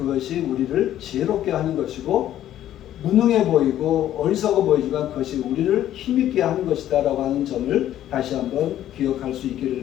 우리를 지혜롭게 하는 것이고 무능해 보이고 어리석어 보이지만 그것이 우리를 힘있게 하는 것이다 라고 하는 점을 다시 한번 기억할 수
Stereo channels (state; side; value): quieter; right; 12.1 dB